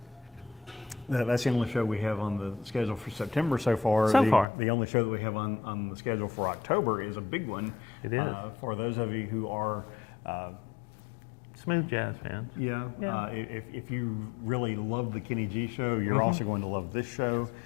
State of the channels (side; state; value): right; drops out; at 4.5 s